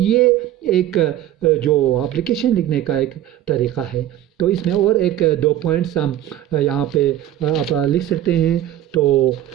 ایک جو اپلیکیشن لکھنے کا ایک طریقہ ہے. تو اس میں اور ایک 2 پوائنٹس ہم یہاں پہ آپ لکھ سکتے ہیں. تو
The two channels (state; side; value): quieter; left; 12.6 dB